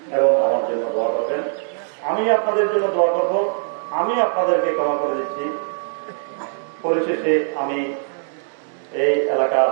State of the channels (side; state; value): left; silent; digital silence